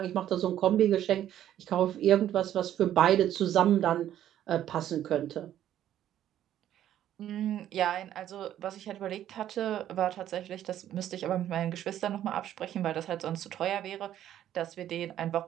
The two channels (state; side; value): quieter; left; 11.5 dB